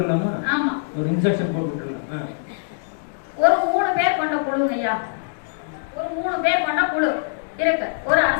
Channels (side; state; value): right; silent; digital silence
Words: ஆமா, ஒரு 3 பேர் கொண்ட குழுங்க ஐயா. ஒரு 3 பேர் கொண்ட குழு இருக்கு. ஒரு